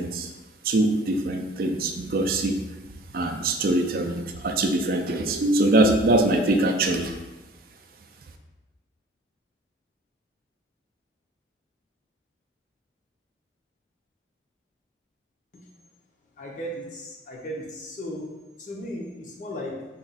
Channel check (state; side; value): normal; both; correlation 0.48